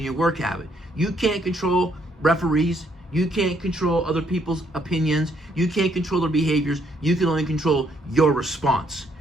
your work habit. You can't control referees. You can't control other people's opinions. You can't control their behaviors. You can only control your response.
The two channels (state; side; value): normal; both; correlation 0.70